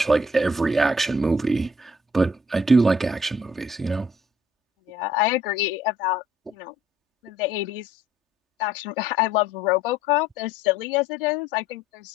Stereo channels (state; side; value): normal; both; correlation 0.60